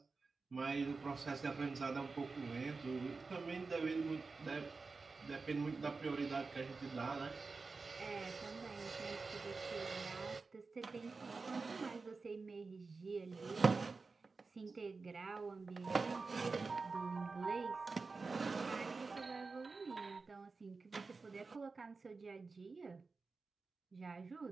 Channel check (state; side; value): quieter; left; 4.2 dB